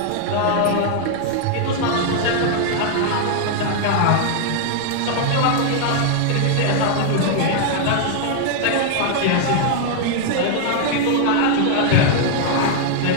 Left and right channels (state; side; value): different; both; correlation 0.00